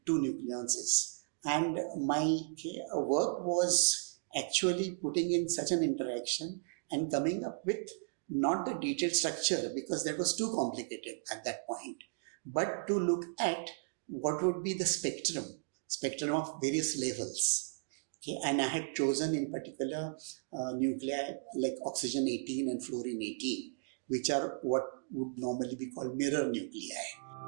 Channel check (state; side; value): silent; left; digital silence